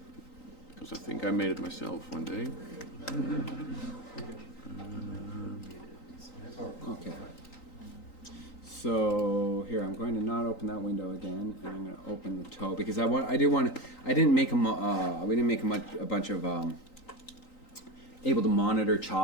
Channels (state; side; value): late; right; 3.9 ms